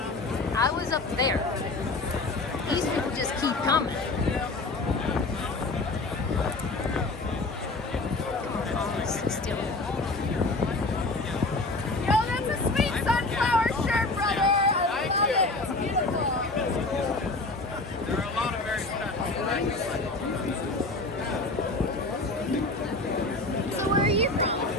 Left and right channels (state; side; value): quieter; right; 3.1 dB